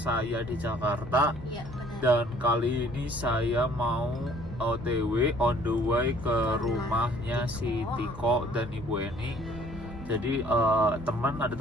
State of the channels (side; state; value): both; normal; correlation 0.57